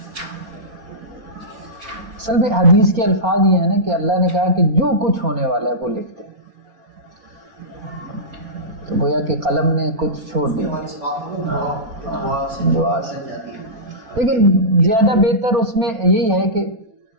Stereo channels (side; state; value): left; late; 4.6 ms